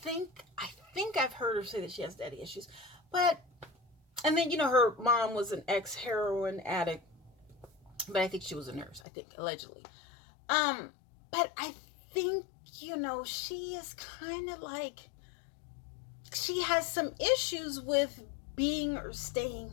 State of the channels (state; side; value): drops out; right; at 9.0 s